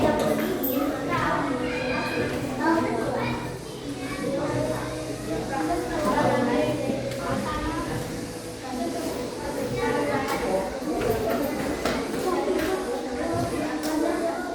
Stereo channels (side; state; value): both; identical; correlation 1.00